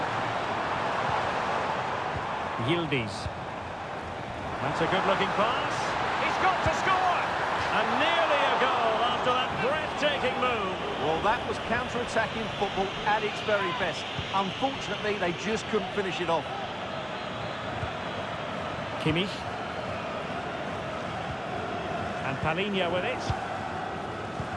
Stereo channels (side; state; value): both; identical; correlation 1.00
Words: Yildiz. That's a good-looking pass. He's got to score! And nearly a goal after that breathtaking move. Well, that was counter-attacking football at its very best. Unfortunately, they just couldn't finish it off. Kimmich. And Palinha with it.